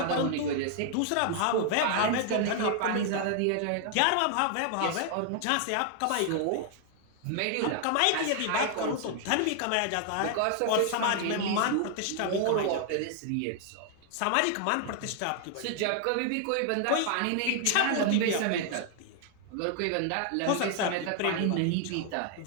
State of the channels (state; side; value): different; both; correlation 0.00